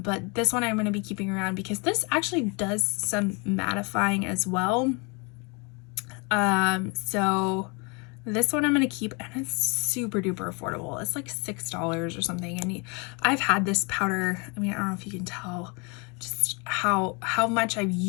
this one I'm going to be keeping around because this actually does some mattifying as well. So this one I'm going to keep, and it's super duper affordable. It's like $6 or something, and I've had this powder, I mean, I don't know if you can tell just how much I've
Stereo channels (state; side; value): quieter; right; 31.4 dB